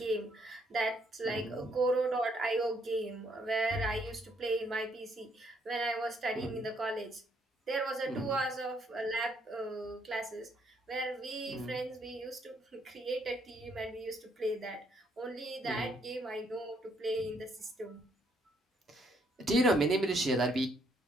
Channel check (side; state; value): both; normal; correlation 0.70